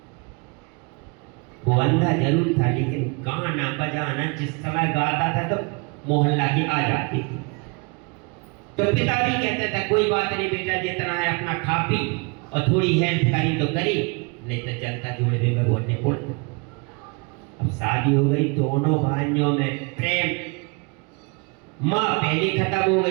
वो अंधा जरूर था, लेकिन गाना बजाना जिस समय गाता था तो मोहल्ला की आ जाती थी। तो पिता भी कहते थे कोई बात नहीं बेटा, जितना है अपना खा पी और थोड़ी हेल्प करी तो करी, नहीं तो जनता जुड़े में बोलने को। अब शादी हो गई, दोनों भाइयों में प्रेम। माँ पहले खत्म हो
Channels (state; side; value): quieter; left; 31.0 dB